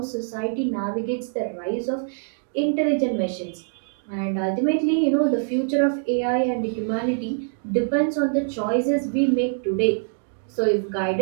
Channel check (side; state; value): left; silent; digital silence